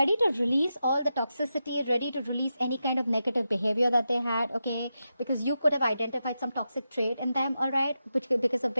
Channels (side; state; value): both; inverted; correlation -0.88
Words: to release all the toxicity, ready to release any kind of negative behavior that they had, okay? Because you could have identified some toxic trait in them, all right? Because of